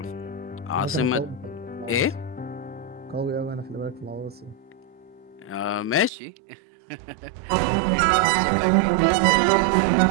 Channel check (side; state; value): left; drops out; at 6.1 s